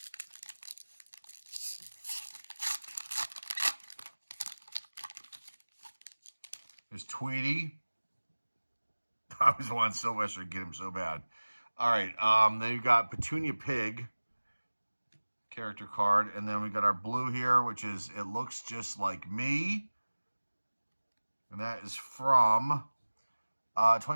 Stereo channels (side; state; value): both; inverted; correlation -1.00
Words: There's Tweety. I always wanted Sylvester to get him so bad. All right. Then you got Petunia Pig character card, and then we got our blue here, which is It Looks Just Like Me, and that is from